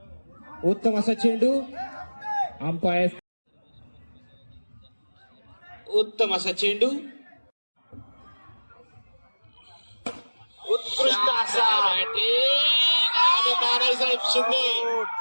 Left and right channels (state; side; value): inverted; both; correlation -1.00